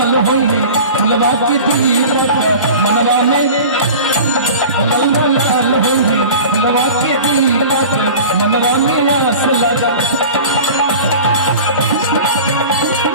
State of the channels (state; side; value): inverted; both; correlation -0.37